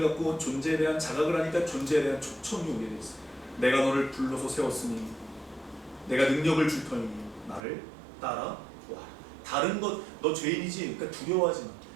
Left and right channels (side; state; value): left; drops out; at 7.6 s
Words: 갖고 존재에 대한 자각을 하니까 존재에 대한 초청이 오게 돼 있어. 내가 너를 불러서 세웠으니 내가 능력을 줄 터이니 나를 따라와. 다른 것, 너 죄인이지? 그러니까 두려워하지